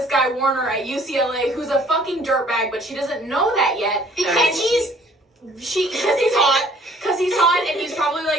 guy Warner at UCLA who's a fucking dirtbag, but she doesn't know that yet. Because he's hot, and he's probably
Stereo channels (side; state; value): both; normal; correlation 0.57